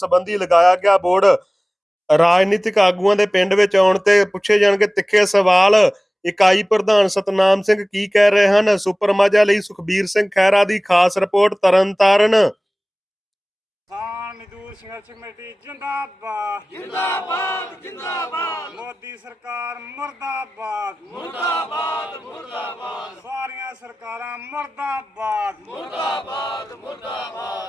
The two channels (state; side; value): normal; both; correlation 0.98